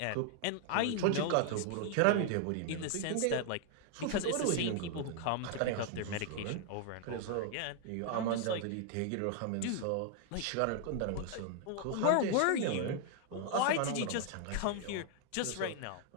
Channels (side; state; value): both; different; correlation 0.00